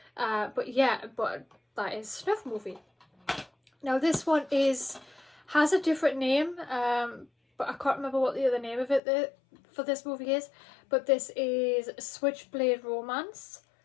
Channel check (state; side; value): drops out; right; at 9.0 s